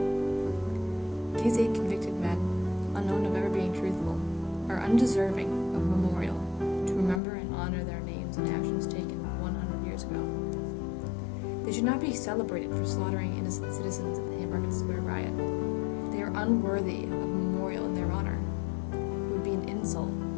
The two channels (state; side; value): drops out; right; at 7.2 s